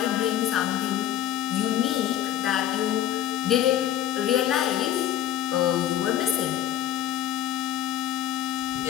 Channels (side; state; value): right; quieter; 11.6 dB